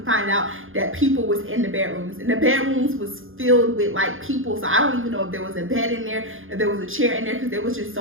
find out that people was in the bedrooms, and the bedrooms was filled with like people. So I don't even know if there was a bed in there, if there was a chair in there, because there was just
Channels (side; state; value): left; late; 0.59 ms